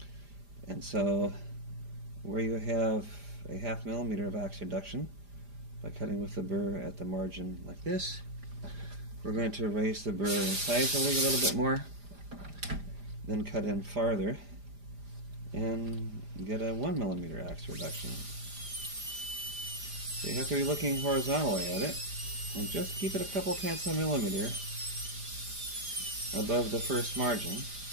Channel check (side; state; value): left; late; 5.0 ms